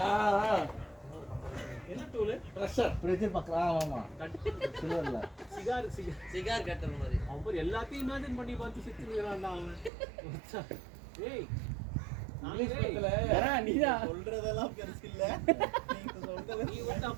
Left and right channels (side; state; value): left; drops out; at 9.9 s